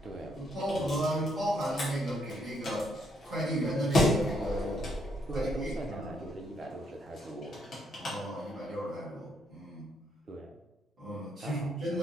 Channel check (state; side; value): normal; both; correlation 0.73